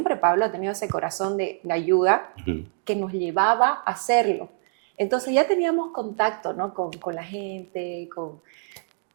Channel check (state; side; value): silent; left; digital silence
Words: Pablo ha tenido ese corazón de ayuda que nos llevaba a hacerlo. Entonces ya teníamos contacto, ¿no? con la gente,